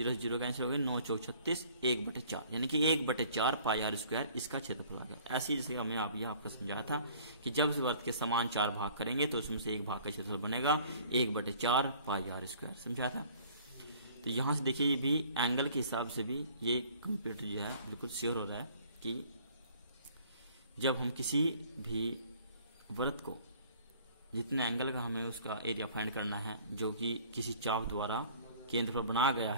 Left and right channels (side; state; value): both; inverted; correlation -0.53